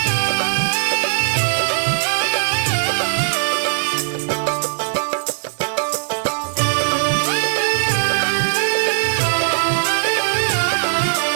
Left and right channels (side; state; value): left; silent; 61 dB below the other